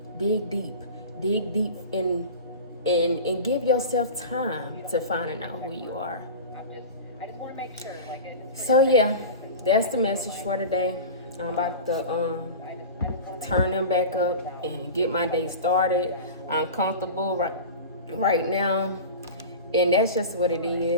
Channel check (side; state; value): both; inverted; correlation -0.32